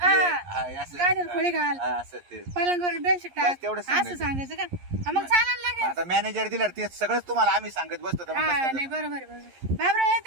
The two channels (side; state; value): left; late; 11 ms